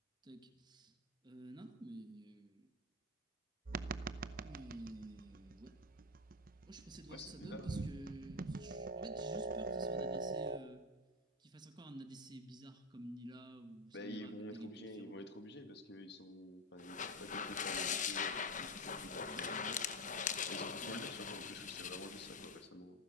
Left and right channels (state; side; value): normal; both; correlation 0.12